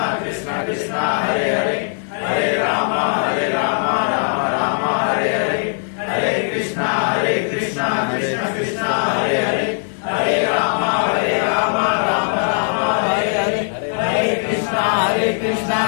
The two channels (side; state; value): right; silent; digital silence